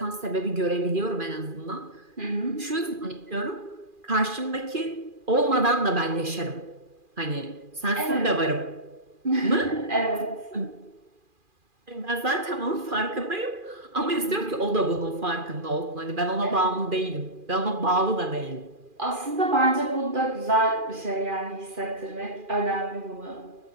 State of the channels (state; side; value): late; left; 2.4 ms